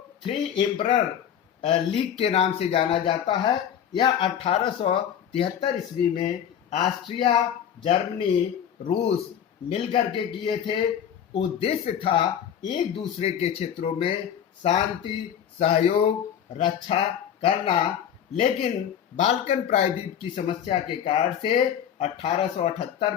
थ्री एम्परर लीग के नाम से जाना जाता है। यह 1873 ईस्वी में ऑस्ट्रिया, जर्मनी, रूस मिलकर के किए थे। उद्देश्य था एक दूसरे के क्षेत्रों में शांति, सहयोग, रक्षा करना, लेकिन बाल्कन प्रायद्वीप की समस्या के कारण से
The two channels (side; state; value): right; quieter; 9.1 dB